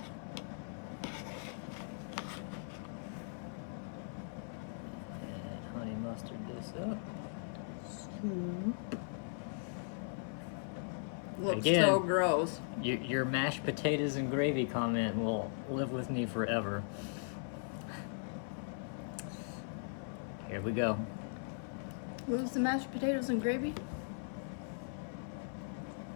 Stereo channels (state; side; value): silent; right; 52 dB below the other